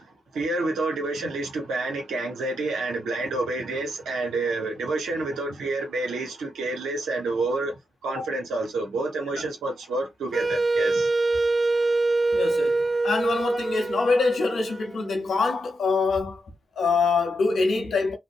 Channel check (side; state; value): both; normal; correlation 0.83